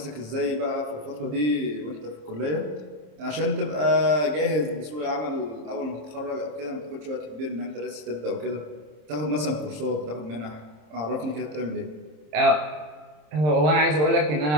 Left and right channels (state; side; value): late; left; 26 ms